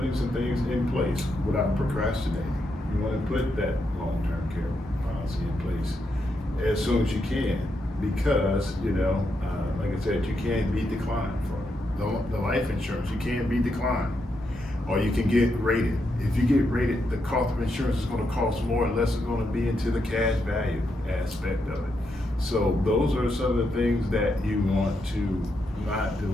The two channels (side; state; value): both; normal; correlation 0.82